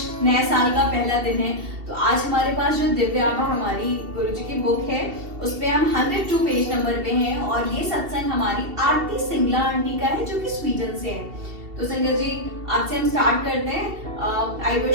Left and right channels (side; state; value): left; late; 2.7 ms